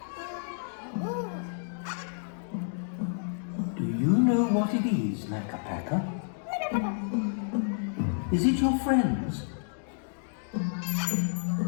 Do you know what it is, Makka Pakka? Is it your friends?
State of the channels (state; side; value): silent; right; digital silence